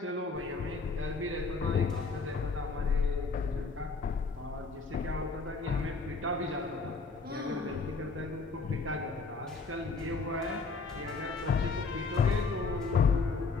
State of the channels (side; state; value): right; quieter; 4.2 dB